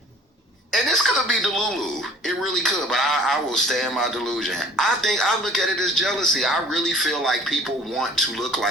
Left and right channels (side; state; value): both; normal; correlation 0.51